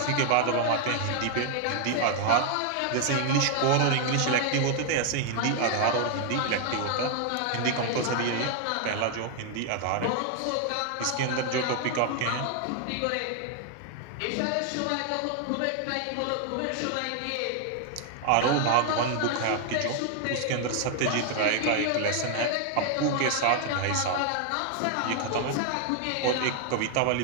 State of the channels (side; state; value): both; different; correlation 0.00